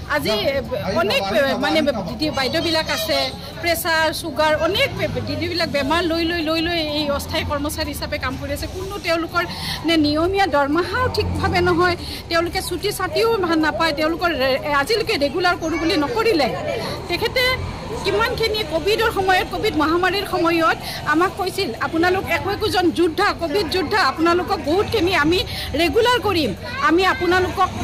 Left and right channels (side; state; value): both; identical; correlation 1.00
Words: আজি অনেক মানে দিদি বাইদেউবিলাক আছে, প্ৰেছাৰ, চুগাৰ, অনেক দিদিবিলাক বেমাৰ লৈ এই অস্থায়ী কৰ্মচাৰী হিচাপে কাম কৰি আছে। কোনো তেওঁলোকৰ নিয়মীয়া দৰমহাও ঠিকভাৱে নহয়, তেওঁলোকে ছুটি ছাটিও নাপায়, তেওঁলোকৰ আজিলৈকে ৰেগুলাৰ কৰোঁ বুলি নকৰিলে। তেখেতে কিমানখিনি কোভিডৰ সময়ত, কোভিড মহামাৰীৰ সময়ত আমাক কৈছিল, আপোনালোক একোজন যোদ্ধা, কোভিড যোদ্ধা, আপোনালোকক বহুতখিনি আমি ৰেগুলাৰ কৰিম, আমি আপোনালোকক